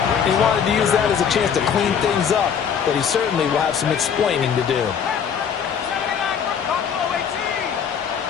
He wanted to use that as a chance to clean things up, but he certainly will have some explaining to do.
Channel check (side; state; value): right; quieter; 7.5 dB